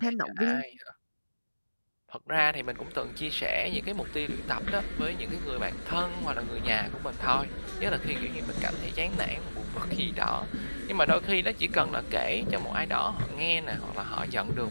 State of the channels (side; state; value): both; inverted; correlation -1.00